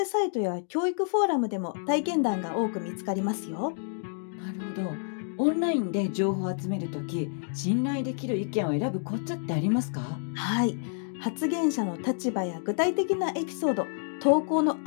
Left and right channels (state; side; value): silent; right; digital silence